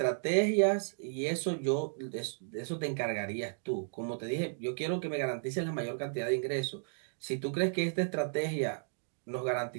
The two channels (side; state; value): left; silent; digital silence